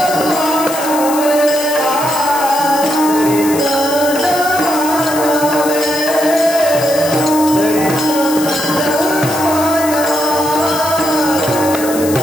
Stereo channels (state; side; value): noise; left; hiss, 9 dB below the sound